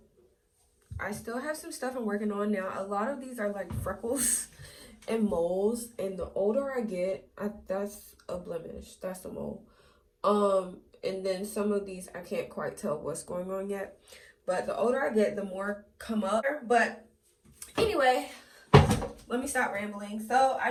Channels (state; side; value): identical; both; correlation 1.00